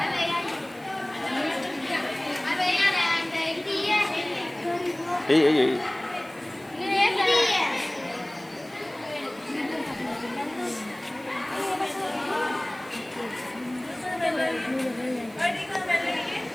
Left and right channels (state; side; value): noise; right; hiss, 25 dB below the sound